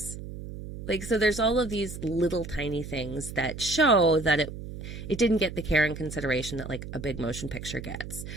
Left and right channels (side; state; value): right; noise; hum, 10 dB below the sound